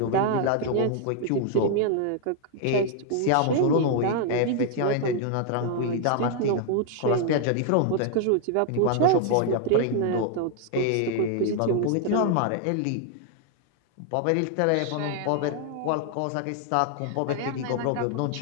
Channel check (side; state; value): both; different; correlation 0.00